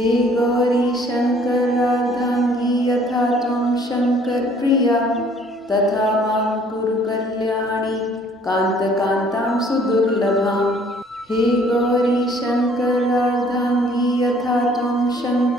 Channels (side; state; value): both; normal; correlation 0.58